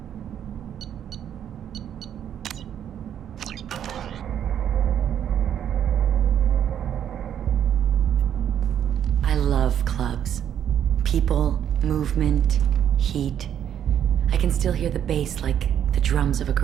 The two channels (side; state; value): left; quieter; 9.6 dB